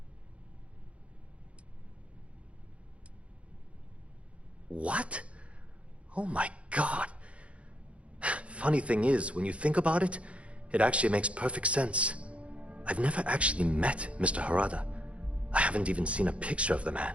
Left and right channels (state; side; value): late; left; 0.062 ms